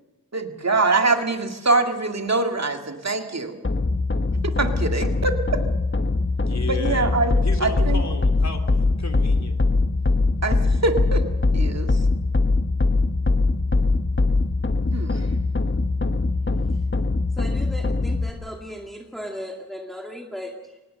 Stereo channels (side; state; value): both; normal; correlation 0.59